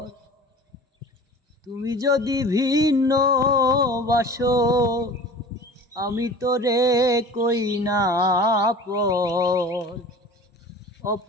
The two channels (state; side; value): normal; both; correlation 0.40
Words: তুমি যদি ভিন্ন বাসো আমি তোরে কই না পর,